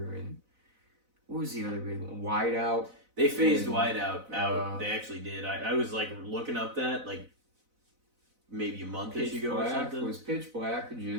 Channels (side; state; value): left; late; 4.0 ms